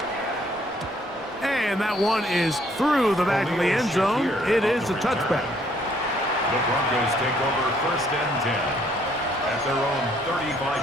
And that one is through the back of the end zone. It is a touchback. The Broncos take over 1st and 10 at their own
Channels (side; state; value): both; normal; correlation 0.65